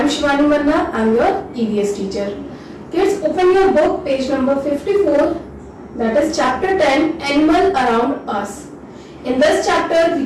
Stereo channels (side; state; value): both; identical; correlation 1.00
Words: Shivani Manna, I am your EVS teacher. Kids, open your book page number 54, that is chapter 10, Animal Around Us. In this chapter, we